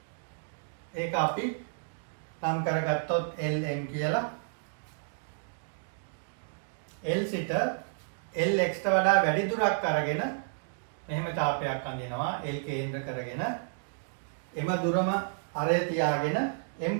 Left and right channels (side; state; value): left; silent; digital silence